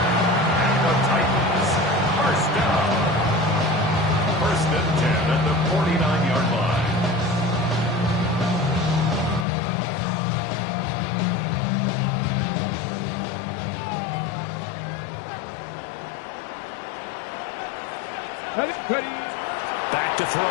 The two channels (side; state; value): right; drops out; at 9.5 s